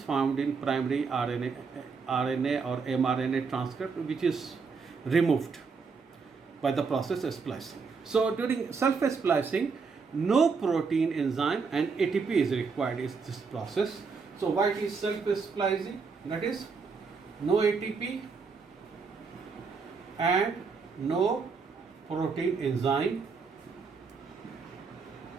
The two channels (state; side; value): quieter; left; 5.1 dB